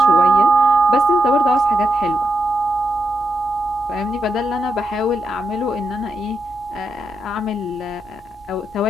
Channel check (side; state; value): both; normal; correlation 0.84